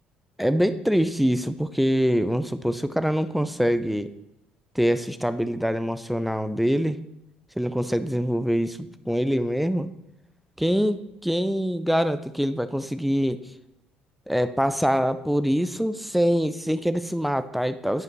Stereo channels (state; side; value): normal; both; correlation 0.97